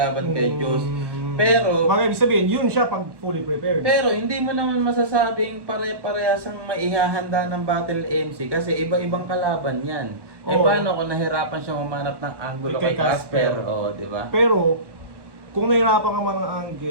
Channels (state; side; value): late; left; 1.1 ms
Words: kay Diyos. Pero, Bagay, ibig sabihin, yun siya pag fully prepared. pero hindi mo naman masasabing pare-parehas ang maihahanda ng Battle MC kasi iba-ibang kalaban yan. Eh Oo. paano kung nahirapan siya mamanap ng angulo Kay kay Casper? Casper. Oo, di ba? Pero, kung nahirapan ka man ng